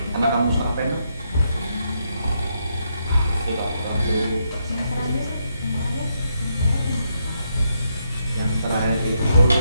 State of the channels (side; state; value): both; inverted; correlation -0.79